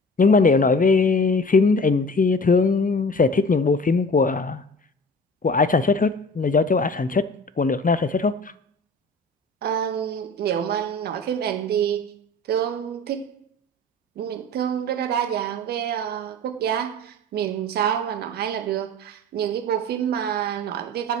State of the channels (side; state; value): both; normal; correlation 0.41